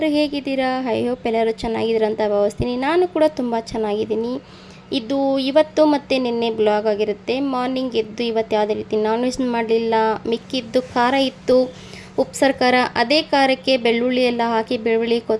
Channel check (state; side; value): identical; both; correlation 1.00